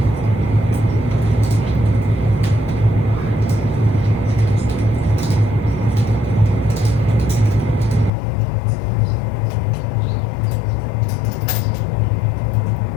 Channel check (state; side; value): drops out; right; at 8.1 s